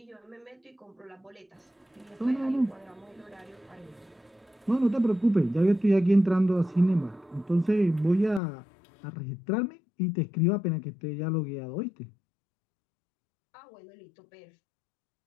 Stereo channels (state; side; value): drops out; right; at 8.4 s